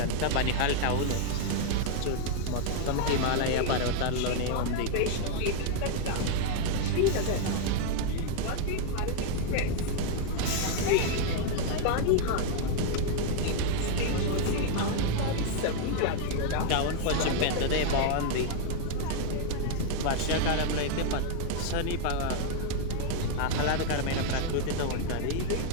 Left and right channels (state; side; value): different; both; correlation 0.00